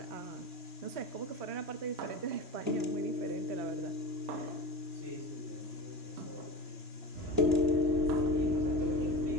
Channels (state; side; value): late; left; 3.1 ms